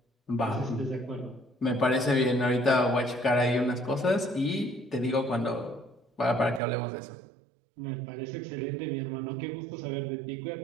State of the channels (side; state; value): left; drops out; at 6.6 s